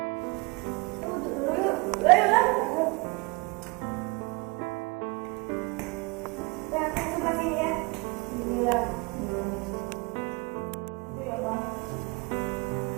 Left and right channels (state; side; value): quieter; left; 27.8 dB